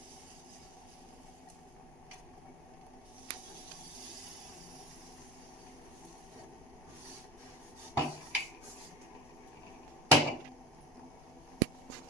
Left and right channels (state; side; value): normal; both; correlation 0.29